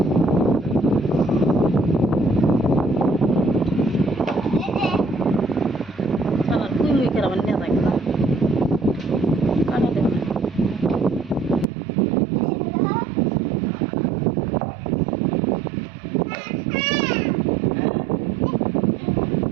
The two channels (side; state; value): left; drops out; at 11.7 s